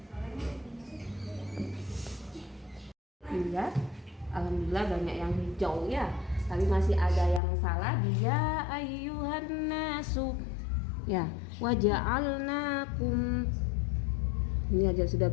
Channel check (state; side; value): drops out; right; at 7.4 s